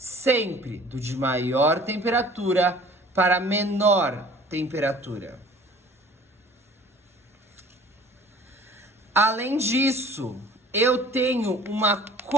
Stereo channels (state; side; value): normal; both; correlation 0.49